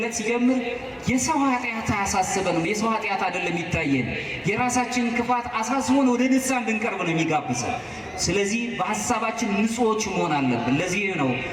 ሲጀምር የሰው ኃጢአት አያሳስበንም። የሰው ኃጢአት አይደለም የሚታየን፣ የራሳችን ክፋት አሳስቦን ወደ ንስሐ እንድንቀርብ ነው የሚጋብዘን። ስለዚህ በሐሳባችን ንጹዎች መሆን አለብን። ለዚህ ነው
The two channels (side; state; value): both; identical; correlation 1.00